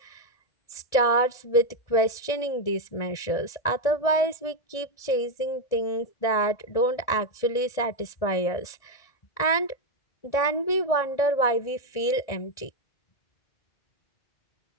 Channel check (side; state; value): right; late; 1.7 ms